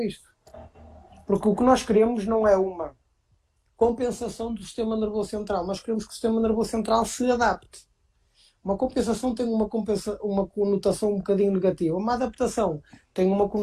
isto. Porque o que nós queremos não é uma compensação do sistema nervoso central. Nós queremos que o sistema nervoso central se adapte. Uma compensação tem uma conotação um bocadinho negativa. Uma adaptação tem uma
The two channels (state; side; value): identical; both; correlation 1.00